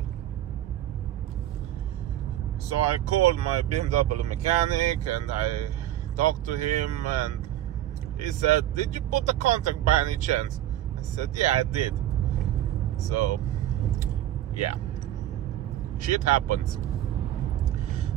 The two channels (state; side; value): quieter; left; 12.9 dB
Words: So I called my BMW mechanic and I talked to him, and he said, did you put the contact by any chance? I said, yeah, I did. So yeah, shit happens.